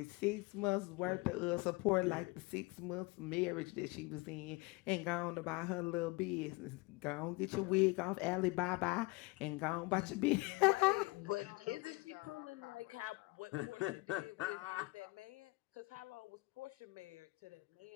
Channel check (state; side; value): quieter; right; 24.7 dB